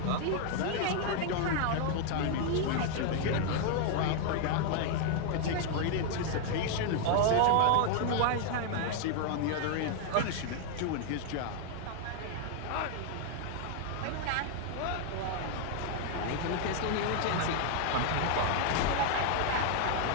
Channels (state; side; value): different; both; correlation 0.00